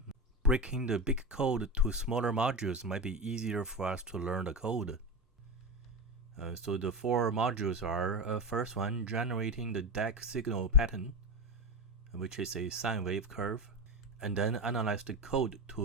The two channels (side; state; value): both; normal; correlation 0.19